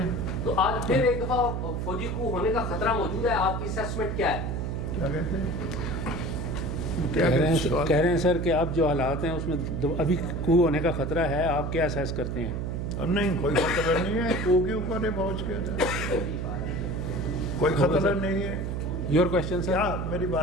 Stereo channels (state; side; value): noise; right; hum, 2 dB below the sound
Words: تو آج پھر ایک دفعہ فوجی کو ہونے کا خطرہ موجود ہے, آپ کی اسیسمنٹ کیا ہے؟ کیا کہتے ہیں؟ کہہ رہے ہیں سر کہ اب جو حالات ہیں اس میں ابھی کو ہونے کا خطرہ ہے, آپ کیا اسیس کرتے ہیں؟ نہیں, کوئی خطرہ نہیں ہے. کو کے اوپر ہے پہنچ کے, کوئی خطرہ نہیں ہے. Your question sir. کیا میری